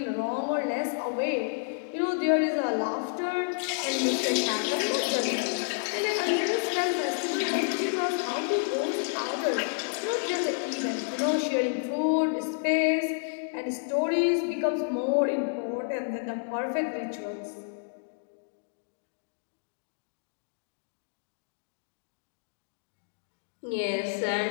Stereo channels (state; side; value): silent; right; digital silence